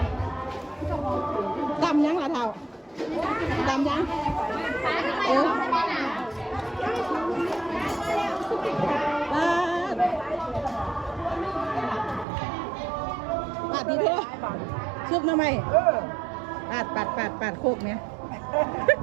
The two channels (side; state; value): left; drops out; at 12.2 s